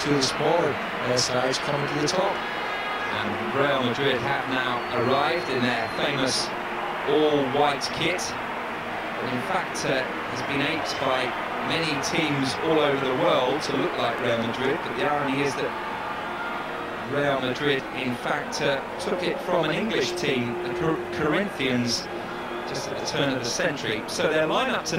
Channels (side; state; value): both; identical; correlation 1.00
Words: of the smaller sides coming to the top. And Real Madrid have now arrived in their famous all-white kit, but in fact has been aped by many teams all over the world to look like Real Madrid. But the irony is that Real Madrid in fact took it from an English team, the Corinthians, just at the turn of the century. So their lineup